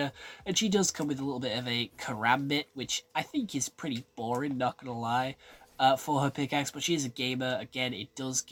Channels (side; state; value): both; identical; correlation 1.00